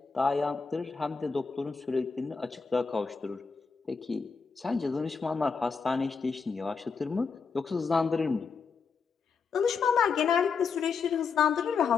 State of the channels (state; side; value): quieter; right; 5.3 dB